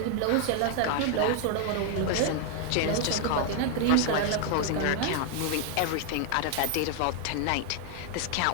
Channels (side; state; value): both; different; correlation 0.00